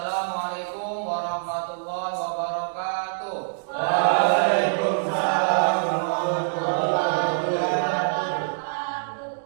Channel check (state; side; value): silent; left; digital silence